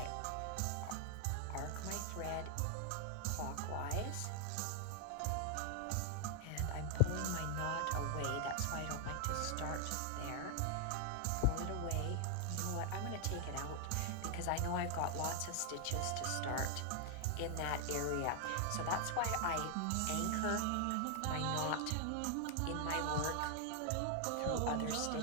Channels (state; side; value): different; both; correlation 0.00